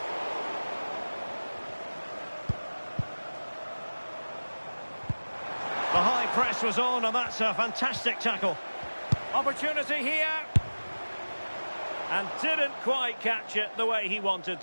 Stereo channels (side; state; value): both; inverted; correlation -1.00